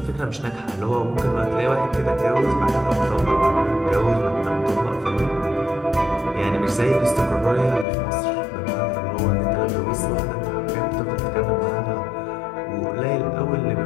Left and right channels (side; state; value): right; drops out; at 7.9 s